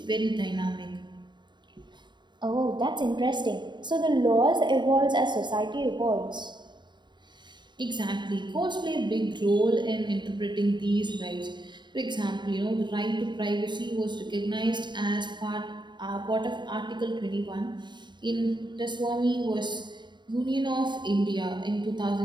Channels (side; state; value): left; late; 0.22 ms